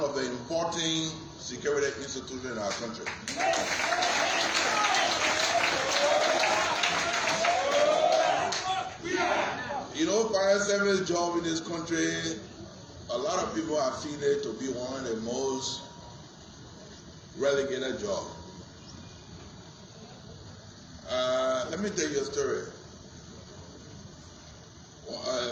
of the important security institutions in our country. You know, fire service job in this country, a lot of people have seen it to be one of the most relegated jobs. Let me tell you a story.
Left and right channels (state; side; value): identical; both; correlation 1.00